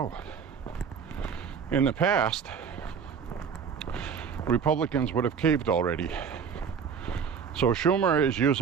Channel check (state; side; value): quieter; left; 6.7 dB